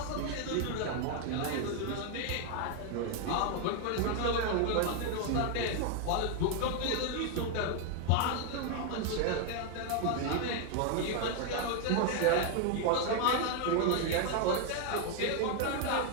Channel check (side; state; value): both; different; correlation 0.01